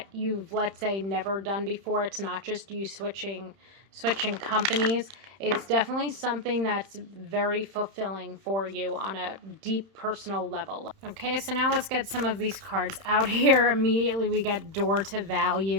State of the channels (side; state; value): left; late; 31 ms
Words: you've, let's say, never done before, it's not just you switching companies. It's definitely something that's very fulfilling for you on a deep personal level. Okay, so now let's get some of these cards out here. Immediately we get door to